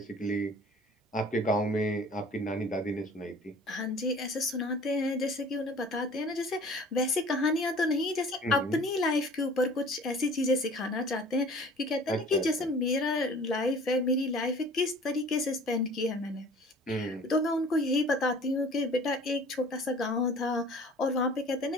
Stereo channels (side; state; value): both; normal; correlation 0.47